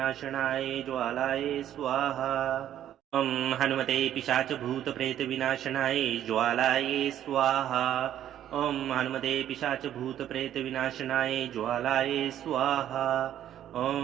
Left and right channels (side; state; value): left; quieter; 11.2 dB